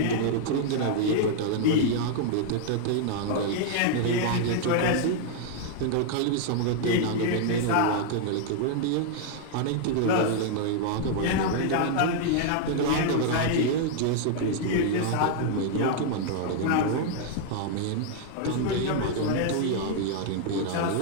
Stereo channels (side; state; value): both; different; correlation -0.01